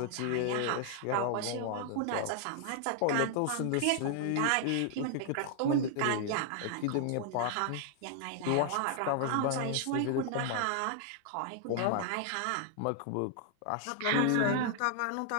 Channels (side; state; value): both; different; correlation 0.00